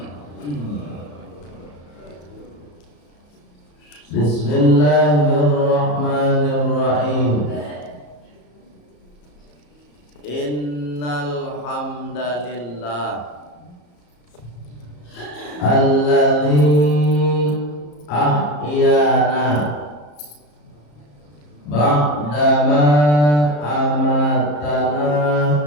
Bismillahirrahmanirrahim. Innal hamdalillah alladzi ahyana ba'dama amatana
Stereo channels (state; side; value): late; right; 34 ms